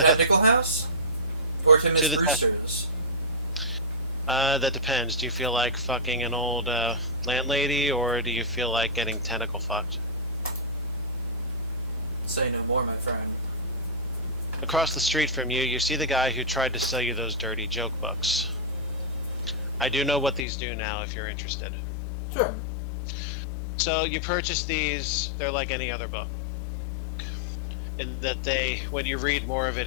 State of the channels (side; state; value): right; drops out; at 20.5 s